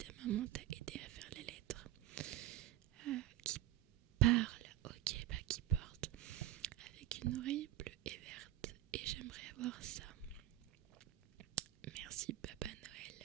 maman t'a aidé à faire les lettres. Qui parle, ok, bah qui porte avec une oreille bleue et verte. Et j'aimerais avoir ça. Merci Papa Noël.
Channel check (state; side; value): quieter; left; 13.9 dB